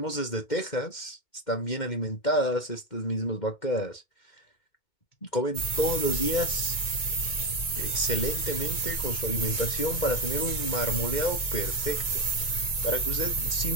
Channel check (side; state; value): right; late; 2.1 ms